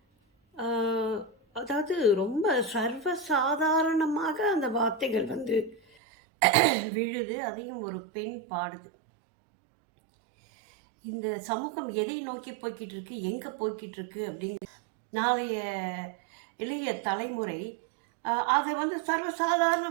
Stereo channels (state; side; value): drops out; left; at 5.8 s